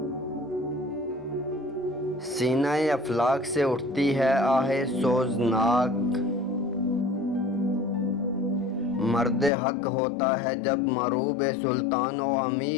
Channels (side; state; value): right; drops out; at 9.5 s